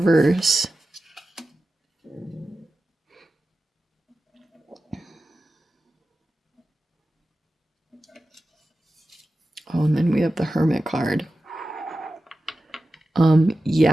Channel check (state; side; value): normal; both; correlation 0.93